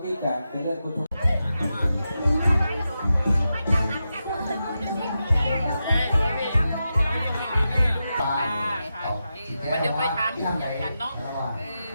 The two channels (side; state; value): both; inverted; correlation -0.89